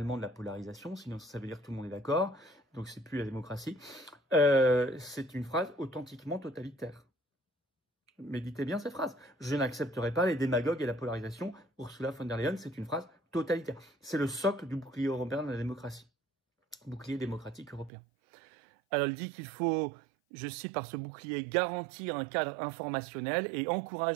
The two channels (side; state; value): left; drops out; at 17.9 s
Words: de la polarisation, sinon ça veut dire que tout le monde est d'accord, donc c'est plus la démocratie. C'est une phrase authentiquement totalitaire. Méditez bien cette phrase. Je n'accepterai pas les démagogues et la polarisation. Ursula von der Leyen, c'est une phrase totalitaire. C'est le socle du bouclier européen de la démocratie. Bouclier démocratique européen. Alors, elle dit qu'il faut, je cite par ce bouclier, garantir un cadre informationnel et